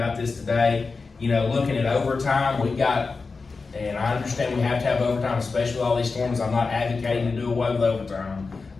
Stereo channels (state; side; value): quieter; right; 4.3 dB